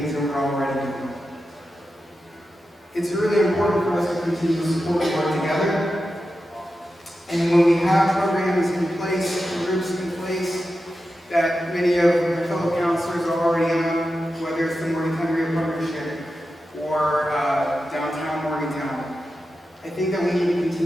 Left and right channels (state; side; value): normal; both; correlation 0.91